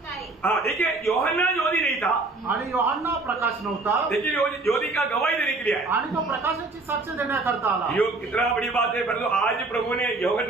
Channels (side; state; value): left; quieter; 3.4 dB